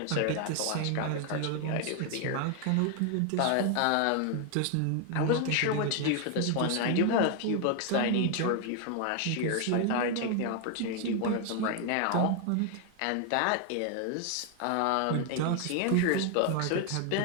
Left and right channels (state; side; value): different; both; correlation 0.01